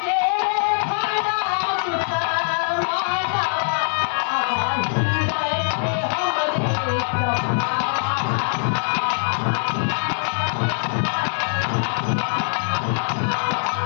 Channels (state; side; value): silent; right; 64 dB below the other